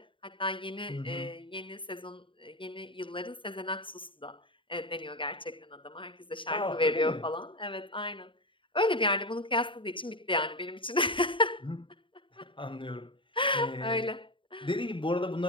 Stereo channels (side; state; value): right; late; 0.25 ms